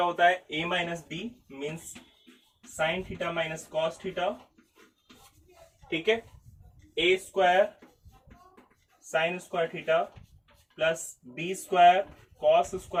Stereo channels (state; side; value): identical; both; correlation 1.00